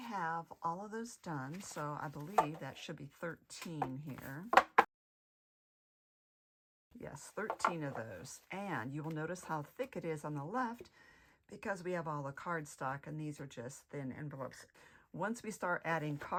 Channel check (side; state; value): both; identical; correlation 1.00